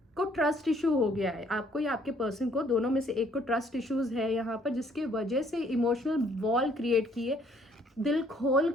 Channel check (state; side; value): normal; both; correlation 0.63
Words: ट्रस्ट इशू हो गया है, आपको या आपके पर्सन को, दोनों में से एक को ट्रस्ट इश्यूज है यहाँ पर, जिसके वजह से इमोशनल वॉल क्रिएट किए, दिल खोल